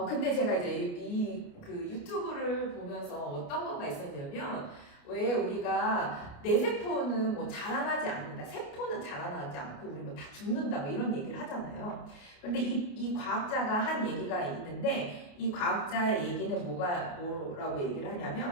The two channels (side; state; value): right; late; 29 ms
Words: 근데 제가 이제 그 유튜브를 보면서 어떤 거가 있었냐면, 왜 우리가 내 세포는 뭐 자라나지 않는다, 세포는 자라나지 않고 우리 뭐 다 죽는다, 뭐 이런 얘기를 하잖아요. 그런데 이 과학자가 한 얘기가 있는데, 이 과학자의 얘기는 뭐라고 얘기를